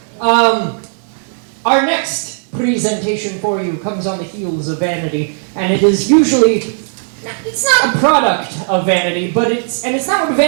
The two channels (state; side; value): silent; left; digital silence